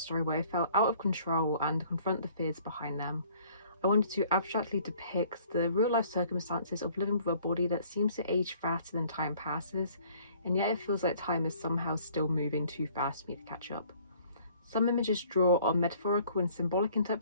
where I felt out of control and confront the fears behind them. I wanted to abstractly depict the real-life circumstances of living with a body that seems to age faster than time passes, and yet it feels like time is somehow still moving too fast for me to catch up. Some images draw on metaphorical and symbolic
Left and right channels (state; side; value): inverted; both; correlation -0.57